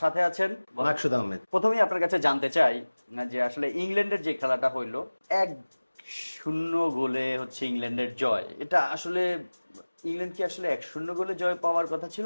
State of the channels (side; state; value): both; inverted; correlation -1.00